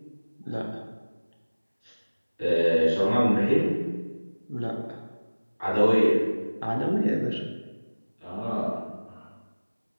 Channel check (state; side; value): inverted; both; correlation -1.00